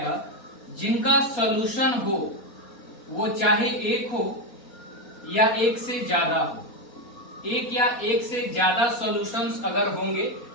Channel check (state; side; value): late; right; 4.2 ms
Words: जिनका सॉल्यूशन हो वो चाहे एक हो या एक से ज्यादा हो। एक या एक से ज्यादा सॉल्यूशंस अगर होंगे